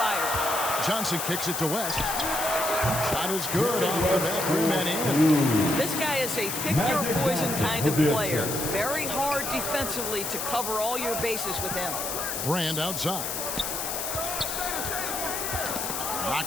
Johnson kicks it to West. Shot is good off the back rim and in. This guy is a pick-your-poison kind of player. Very hard defensively to cover all your bases with him. Brand outside.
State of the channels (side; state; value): left; noise; hiss, 3 dB below the sound